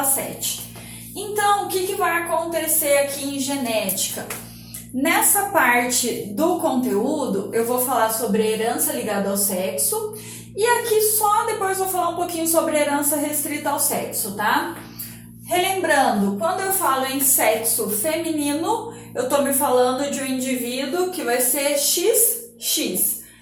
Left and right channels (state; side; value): identical; both; correlation 1.00